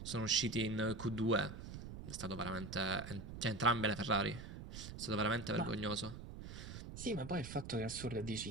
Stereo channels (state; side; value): noise; right; rumble, 10 dB below the sound